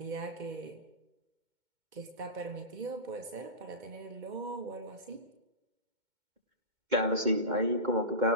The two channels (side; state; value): left; late; 2.2 ms